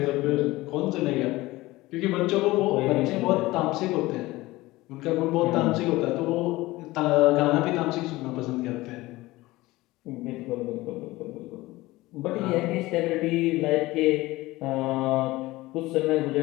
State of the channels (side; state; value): right; quieter; 19.2 dB